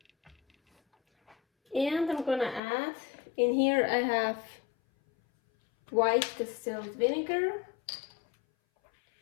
And I'm gonna add, in here I have white distilled vinegar,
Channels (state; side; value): drops out; right; at 2.6 s